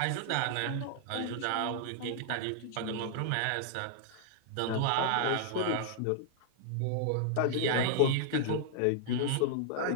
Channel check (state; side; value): different; both; correlation -0.01